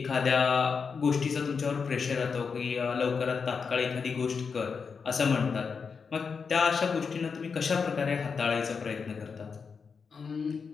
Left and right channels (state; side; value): quieter; right; 5.6 dB